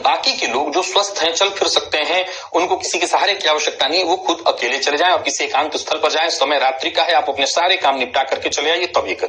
के लोग जो स्वस्थ हैं, चल फिर सकते हैं, उनको किसी के सहारे की आवश्यकता नहीं है, वो खुद अकेले चले जाएं और किसी एकांत स्थल पर जाएं। समय रात्रि का है, आप अपने सारे काम निपटा करके चले आइए, तब ये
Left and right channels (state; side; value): identical; both; correlation 1.00